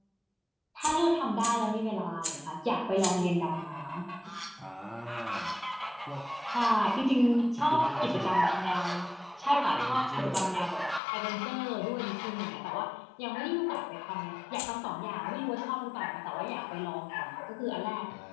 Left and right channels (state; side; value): drops out; right; at 11.0 s